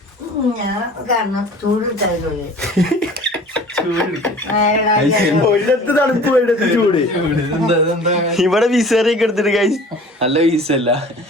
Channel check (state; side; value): normal; both; correlation 0.45